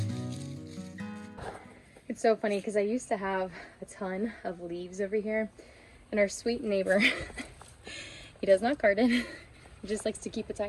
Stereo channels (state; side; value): identical; both; correlation 1.00